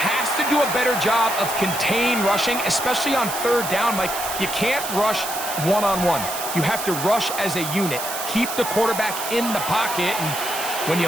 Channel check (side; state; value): right; noise; hiss, 6 dB below the sound